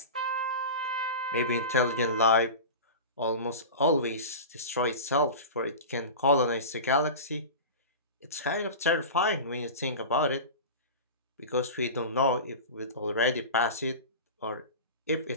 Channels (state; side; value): inverted; both; correlation -0.30